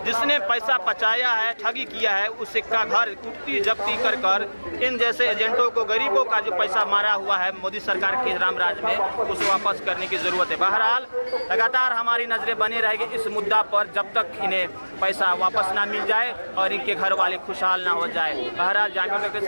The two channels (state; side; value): inverted; both; correlation -1.00